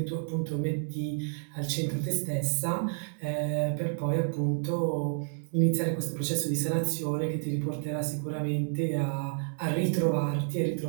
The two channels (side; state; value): left; silent; digital silence